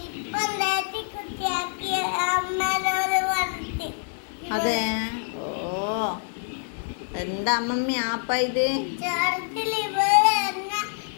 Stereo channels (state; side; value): silent; right; digital silence